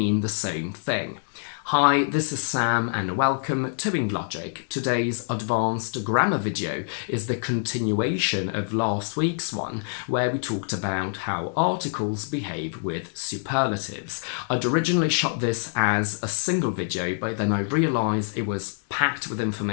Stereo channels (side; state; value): right; silent; digital silence